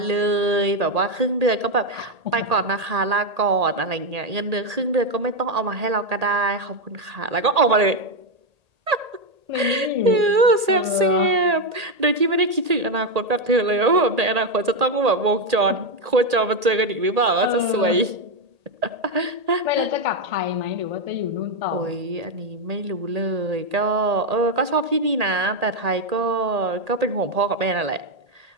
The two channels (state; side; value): late; left; 1.8 ms